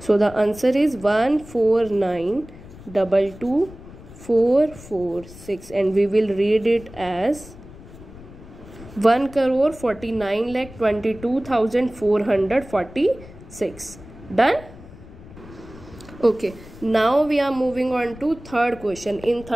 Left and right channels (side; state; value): left; noise; rumble, 18 dB below the sound